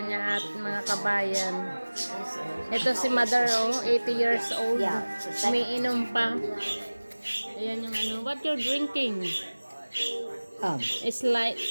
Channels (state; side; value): inverted; both; correlation -1.00